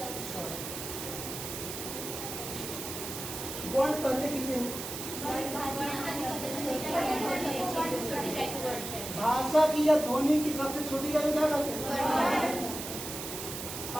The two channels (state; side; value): noise; right; hiss, 7 dB below the sound